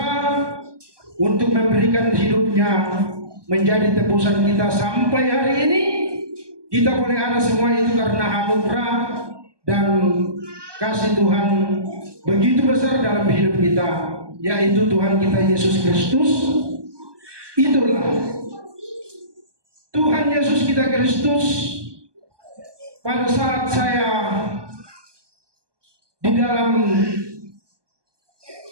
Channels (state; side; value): late; left; 1.2 ms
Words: untuk memberikan hidupnya menjadi tebusan kita. Sampai hari ini kita boleh ada semua itu karena anugerah dan kasih Tuhan begitu besar dalam hidup kita, yaitu Tuhan kita Yesus Kristus. Itulah Tuhan Yesus kita Kristus. Pada saat saya di dalam